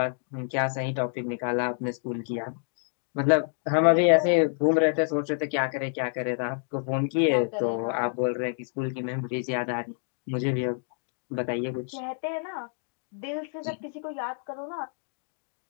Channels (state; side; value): silent; right; digital silence